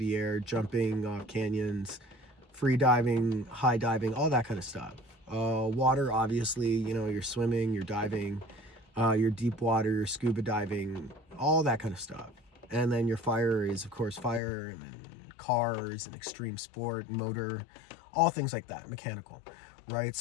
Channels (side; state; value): right; drops out; at 14.4 s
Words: air, jumping off canyons, free diving, high diving, all that kind of stuff. Water, obviously, you're swimming, you're diving, you're deep water, you're scuba diving, all that kind of stuff. And then your fire is, of course, fire, and then cars and extreme sport, motor, all things like that, mechanical, right?